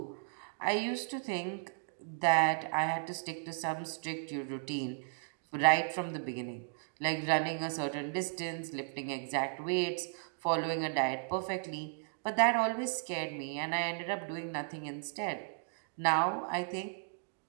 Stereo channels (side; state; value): left; silent; digital silence